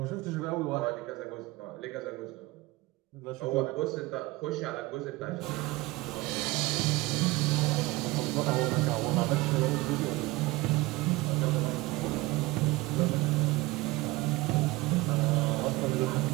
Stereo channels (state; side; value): quieter; left; 20.9 dB